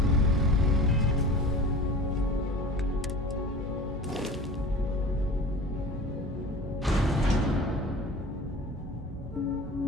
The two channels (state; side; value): normal; both; correlation 0.39